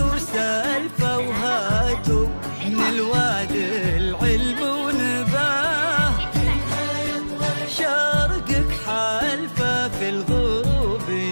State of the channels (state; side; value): inverted; both; correlation -1.00